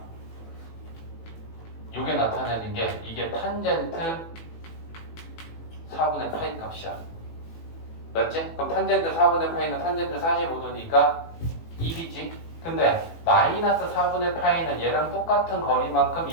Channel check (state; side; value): late; right; 18 ms